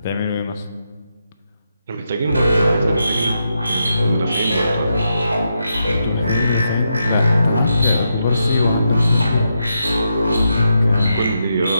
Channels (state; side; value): inverted; both; correlation -0.83